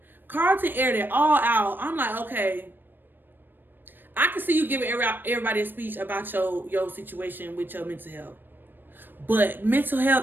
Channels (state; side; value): late; left; 0.094 ms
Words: Carlton aired it all out. I'm like, okay. I can see you giving everybody a speech about your situation with your mental health. But mental